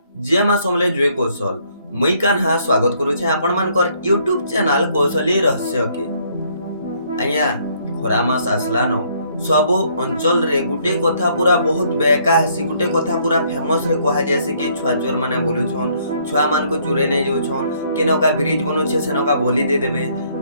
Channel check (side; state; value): both; inverted; correlation -0.66